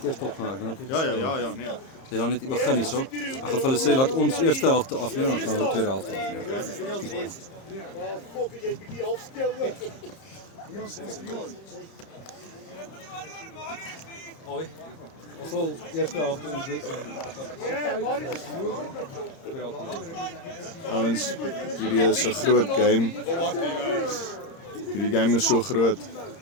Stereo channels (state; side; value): late; right; 30 ms